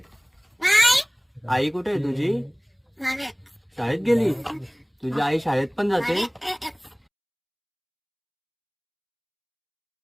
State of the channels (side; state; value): both; identical; correlation 1.00